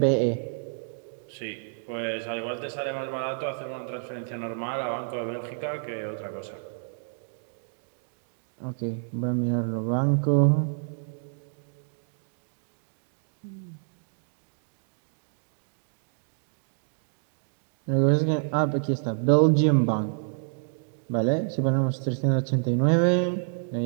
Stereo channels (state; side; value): silent; left; digital silence